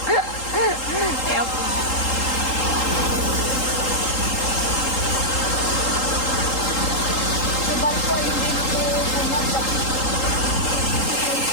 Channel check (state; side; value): late; right; 3.8 ms